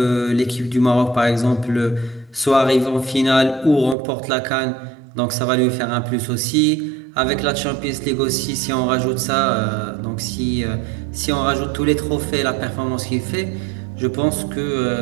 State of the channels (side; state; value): left; drops out; at 4.0 s